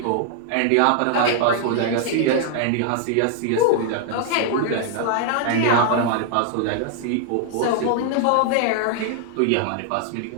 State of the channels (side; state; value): both; different; correlation 0.00